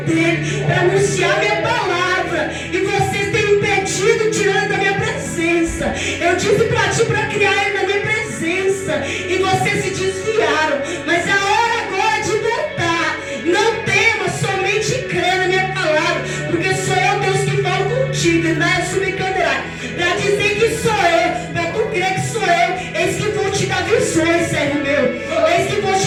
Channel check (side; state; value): both; identical; correlation 1.00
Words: dele, para anunciar minha palavra, e vocês têm impedido, tirando da minha presença. Eu disse para ti para criar ele na minha presença, e vocês se desviaram, mas é a hora agora de voltar. Não tema, somente crê na minha palavra, porque sou eu, Deus, que falo contigo, Endaia Subcandará, para dizer que sou eu, para tu crer que sou eu. Eis que vou te dar visões, servo meu, eis que vou